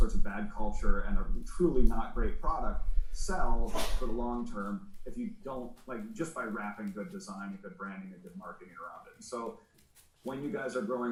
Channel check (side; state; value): both; identical; correlation 1.00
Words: of bad culture and a truly not great product sell for the long term if you don't, like, just by wrapping good design and good branding and good marketing around it. And so when you guys are